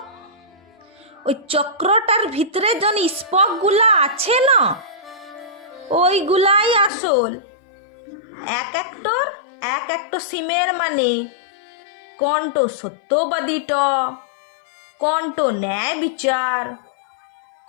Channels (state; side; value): drops out; right; at 6.9 s